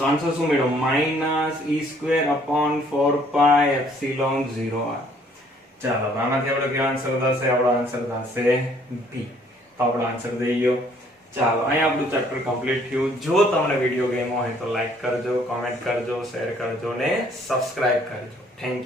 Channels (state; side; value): normal; both; correlation 0.62